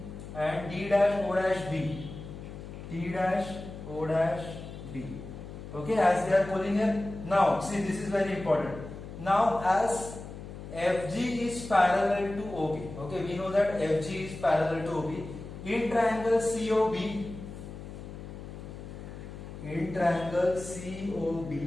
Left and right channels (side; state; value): left; noise; hum, 12 dB below the sound